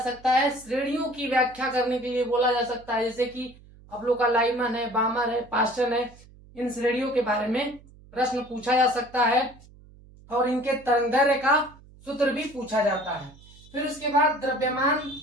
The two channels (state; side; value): noise; right; hum, 23 dB below the sound